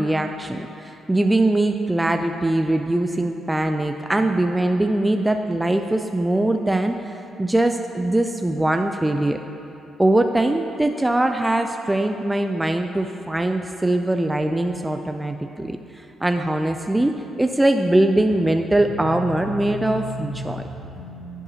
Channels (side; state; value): both; normal; correlation 0.94